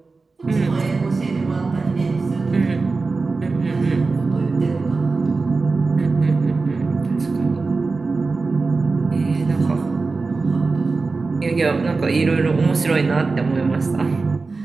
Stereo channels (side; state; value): left; quieter; 4.0 dB